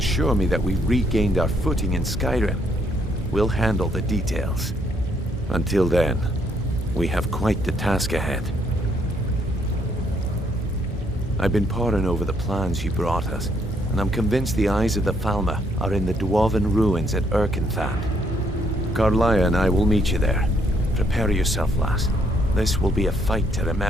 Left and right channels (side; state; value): both; normal; correlation 0.71